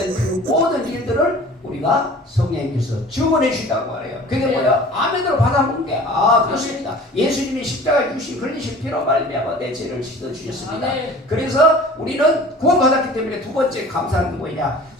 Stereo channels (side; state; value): both; normal; correlation 0.44